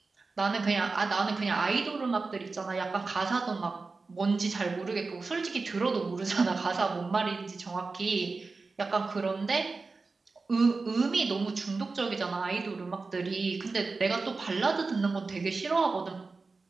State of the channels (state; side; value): quieter; left; 4.0 dB